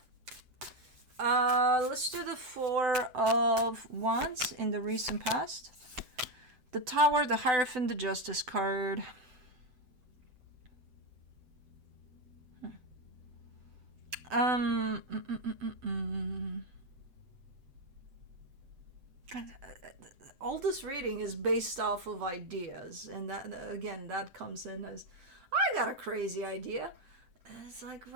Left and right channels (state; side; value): late; left; 7.9 ms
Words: Let's do the Four of Wands in the recent past. The Tower, the Hierophant, the Justice card. All this reading is based off of ideas, and that, again, that comes in as, I got a crazy idea. And it's like,